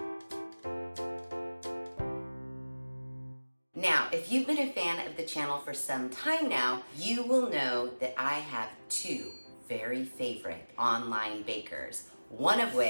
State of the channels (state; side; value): inverted; both; correlation -1.00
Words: Now, if you've been a fan of the channel for some time now, you will know that I have two very favorite online bakers, one of